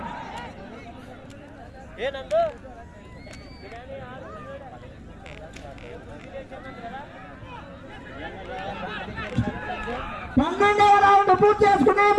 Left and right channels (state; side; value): identical; both; correlation 1.00